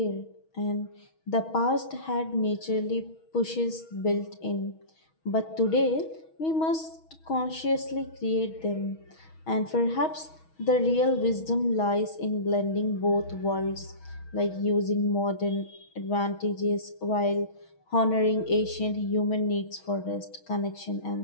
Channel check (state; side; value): late; right; 6.3 ms